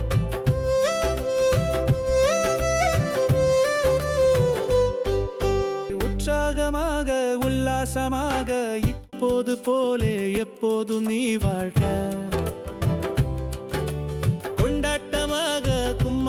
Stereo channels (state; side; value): identical; both; correlation 1.00